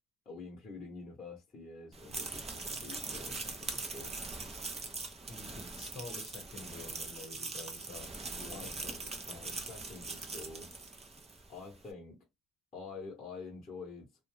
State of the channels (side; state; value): both; normal; correlation 0.46